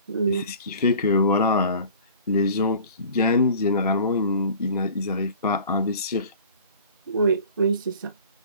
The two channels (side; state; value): both; inverted; correlation -0.45